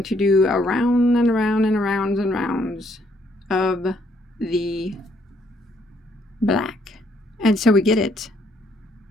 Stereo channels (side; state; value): both; normal; correlation 0.69